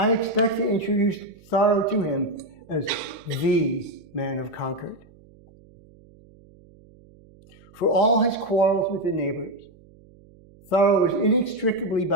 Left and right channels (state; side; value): noise; right; hum, 26 dB below the sound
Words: expect to introduce Thoreau to him as the man of Concord. For all his quarrels with the neighbors, Thoreau was inextricably